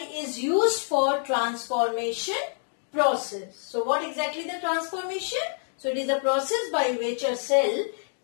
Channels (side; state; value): right; silent; digital silence